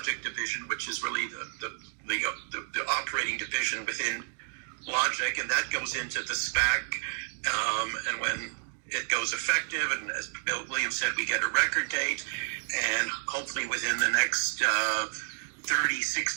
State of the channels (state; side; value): silent; left; digital silence